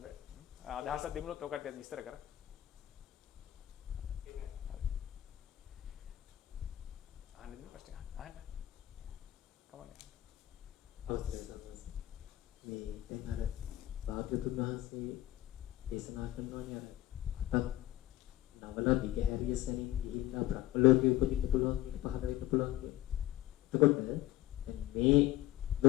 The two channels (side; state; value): right; quieter; 15.3 dB